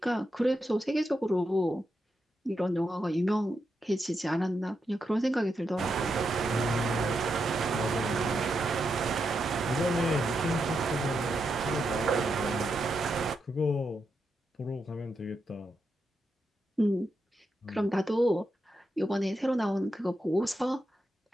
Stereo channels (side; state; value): both; normal; correlation 0.84